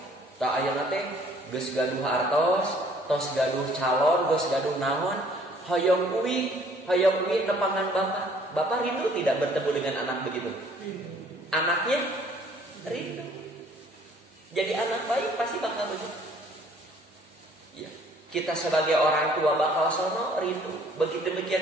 Tah ayeuna teh geus gaduh artos, tos gaduh calon, geus gaduh naon, hoyong uwi nepangan bapak. Bapak rindu tidak bertemu dengan anak begitu? Anaknya rindu. Jadi anak baik pasti bakal begitu. Ya, kita sebagai orang tua bakal sono rindu. Begitu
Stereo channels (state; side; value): normal; both; correlation 0.58